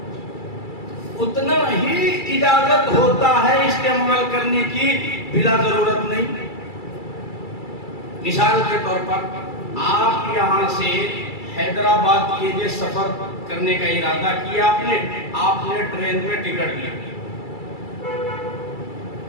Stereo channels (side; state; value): right; late; 2.3 ms